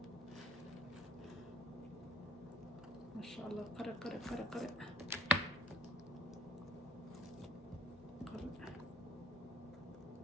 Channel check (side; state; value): both; normal; correlation 0.59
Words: masha allah qare